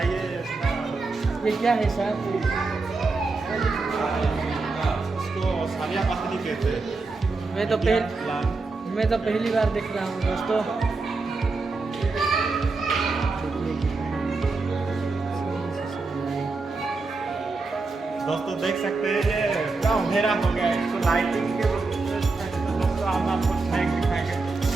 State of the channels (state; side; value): quieter; left; 3.8 dB